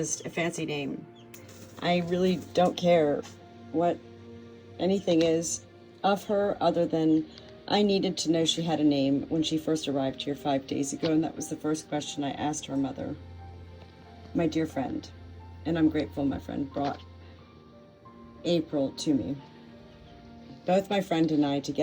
a fancy name. I really don't care what anything is of her other than I needed to know she had a name when she first arrived here 5 days ago, and that was the first question I asked her mother, my dear friend. And I'm grateful my friend brought April to me. Both my friend and I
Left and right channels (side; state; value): both; identical; correlation 1.00